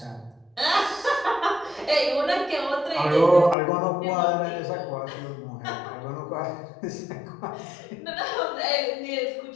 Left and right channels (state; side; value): drops out; right; at 3.6 s